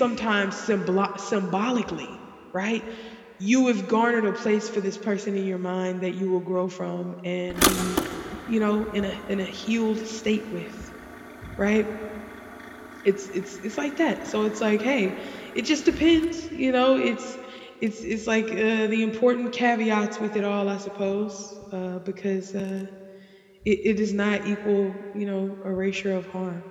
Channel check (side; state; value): both; identical; correlation 1.00